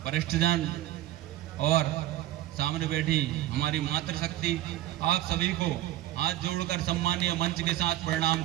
वरिष्ठजन और सामने बैठी हमारी मातृशक्ति, आप सभी को हाथ जोड़कर सम्मानीय मंच के साथ प्रणाम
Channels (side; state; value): left; quieter; 14.6 dB